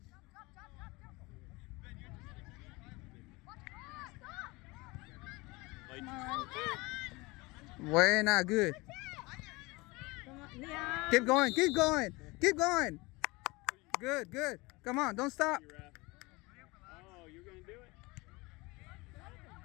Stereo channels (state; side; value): quieter; right; 23.9 dB